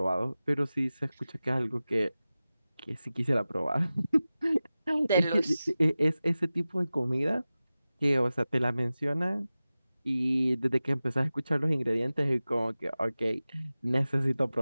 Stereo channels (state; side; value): inverted; both; correlation -0.96